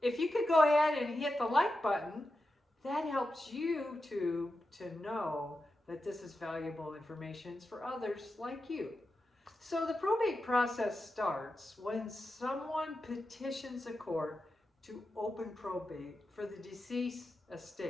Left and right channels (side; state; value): both; normal; correlation 0.90